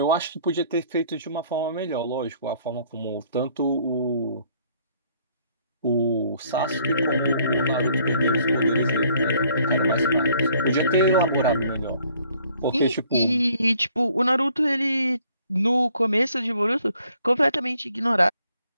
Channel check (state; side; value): inverted; both; correlation -0.63